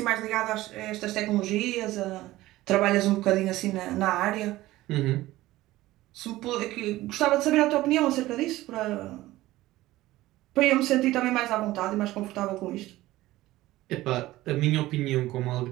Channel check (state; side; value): quieter; left; 16.9 dB